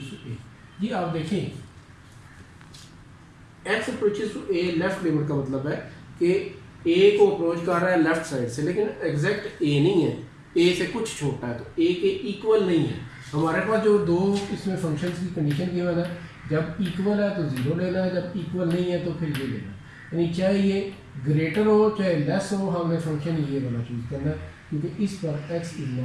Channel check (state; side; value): identical; both; correlation 1.00